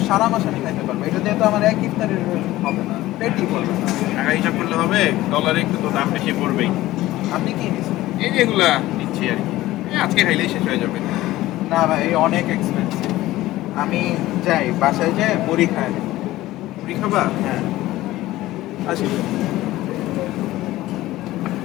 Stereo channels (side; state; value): right; quieter; 16.5 dB